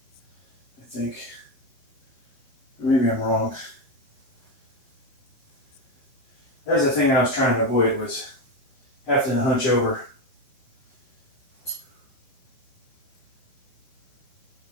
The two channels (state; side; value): late; right; 7.6 ms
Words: I think. Maybe I'm wrong. That's the thing I was trying to avoid, was having to hunch over.